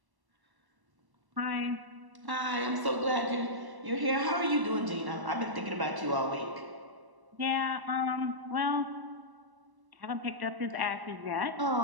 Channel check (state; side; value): late; left; 1.1 ms